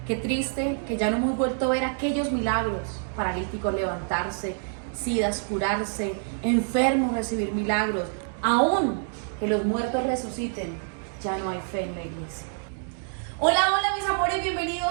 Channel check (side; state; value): left; silent; digital silence